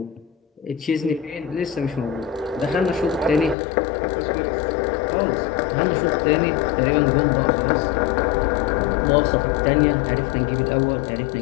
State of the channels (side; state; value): right; drops out; at 3.6 s